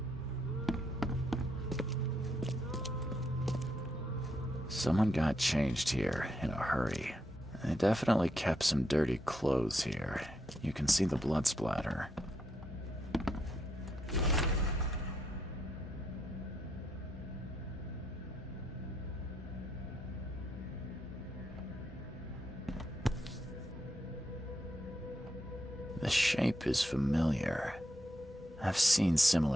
Someone got changed here in a hurry. They definitely kept some dirty clothes here. You can see the blood splatter. The shape is familiar. I've seen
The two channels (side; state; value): both; normal; correlation 0.79